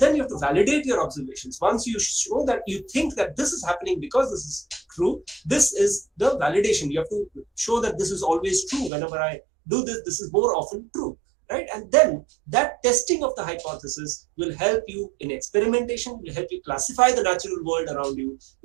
you have to validate your observations. Once you show that you think that this is happening because this is true, this is the validation. You have to show that this is always true. Whenever I do this, this is more often true, right? And then that testing of the hypothesis will help you in experimentation, will help you classify the natural world around you,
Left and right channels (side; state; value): left; drops out; at 8.9 s